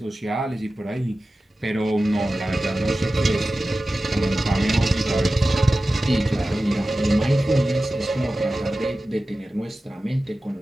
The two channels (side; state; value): both; normal; correlation 0.95